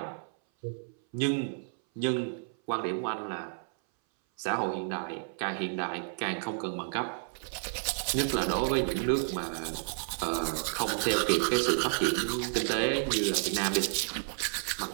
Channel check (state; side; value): silent; left; 57 dB below the other